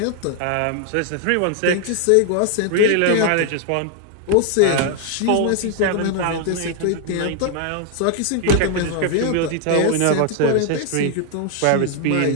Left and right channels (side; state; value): both; different; correlation 0.00